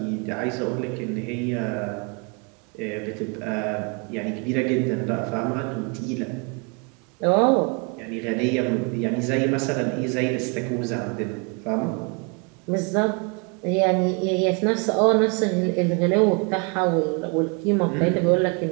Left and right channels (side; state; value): left; quieter; 33.4 dB